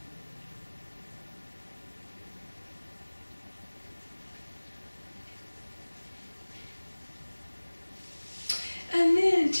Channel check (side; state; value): both; inverted; correlation -1.00